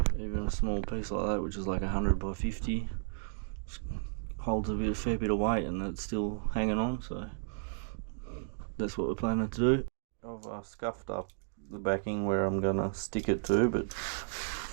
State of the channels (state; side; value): silent; left; digital silence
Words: even a small piece like that, which is like 100 by 50, holds a fair bit of weight and it's still hanging on, so that's what we're planning to do. I've scuffed up the backing where I'm gonna stick it to, but